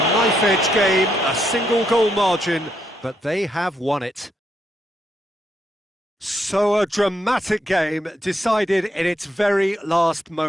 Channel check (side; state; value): both; normal; correlation 0.78